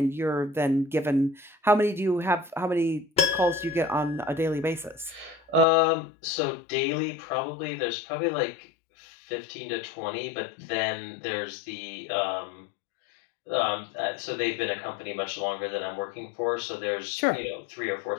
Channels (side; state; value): right; drops out; at 5.7 s